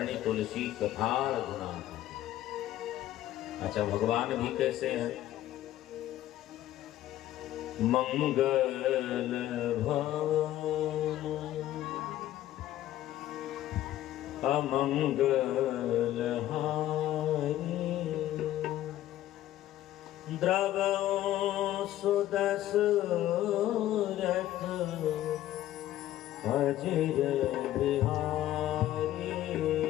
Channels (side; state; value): right; quieter; 13.6 dB